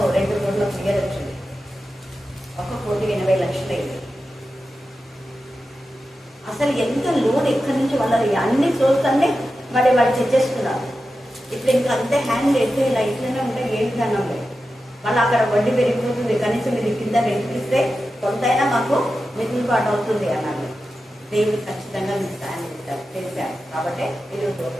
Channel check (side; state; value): both; normal; correlation 0.91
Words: 2 కోట్ల క్లియర్ వచ్చింది. 1,80,00,000 అయింది. అసలు ఎంత లోన్ ఎక్కడి నుంచి వాళ్ళని అన్ని సోర్స్ అన్ని మరి వాళ్ళు తెచ్చేస్తున్నారు. ఇప్పుడు ఇంకా అంతే హ్యాండ్ ఎట్లా ఇలా ఇట్లనే ఉంటే ఏ విధానం లేదు. మళ్ళీ అక్కడ వడ్డీ పెరిగిపోతుంది. కనీసం మీరు కింద రెంటిస్తే కొంతైనా మాకు మిగులుబాటు అవుతుంది అన్నాడు. దేవుడు ఖచ్చితంగా మీకు సాయం చేశారు, చేశారు. కాబట్టి ఈరోజు